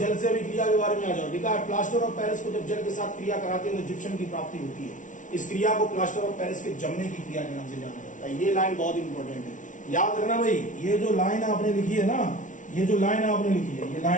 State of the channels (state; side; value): late; right; 0.37 ms